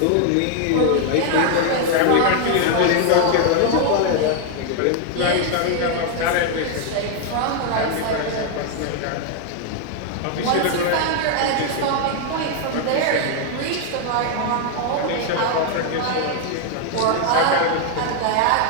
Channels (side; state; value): both; different; correlation 0.00